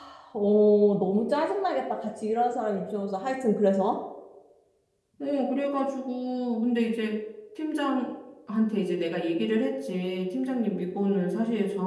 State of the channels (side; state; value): both; identical; correlation 1.00